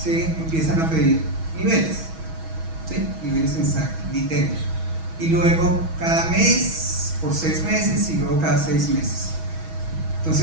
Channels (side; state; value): left; late; 6.2 ms